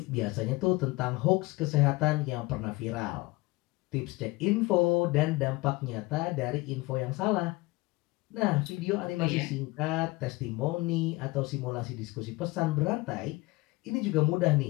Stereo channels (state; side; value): quieter; right; 22.0 dB